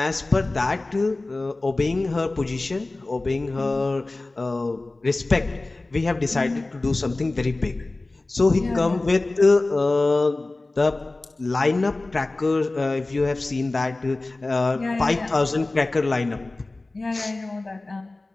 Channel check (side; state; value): right; quieter; 3.1 dB